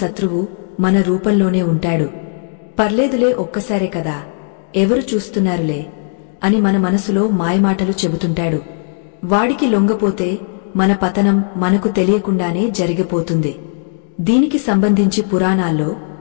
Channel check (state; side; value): silent; right; 69 dB below the other